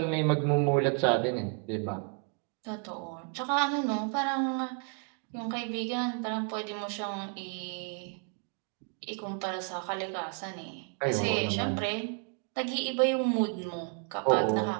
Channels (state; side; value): quieter; left; 37.9 dB